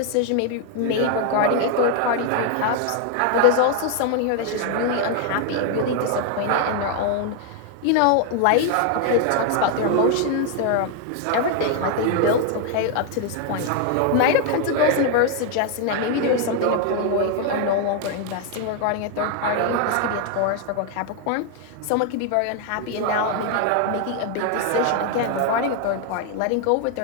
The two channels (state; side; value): different; both; correlation 0.00